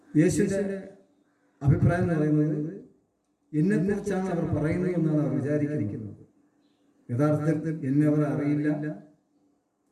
യേശുവിൻ്റെ അഭിപ്രായം എന്ന് പറയുന്നത് എന്നെക്കുറിച്ചാണ് അവർ പറയുന്നത് എന്നാണ് അവർ വിചാരിക്കുന്നത്. യഥാർത്ഥത്തിൽ എന്നെ അവർ അറിയില്ല,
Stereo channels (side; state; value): both; identical; correlation 1.00